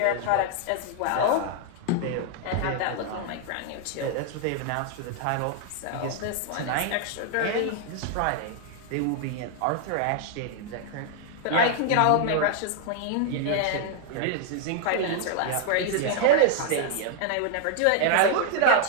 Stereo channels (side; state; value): both; different; correlation 0.00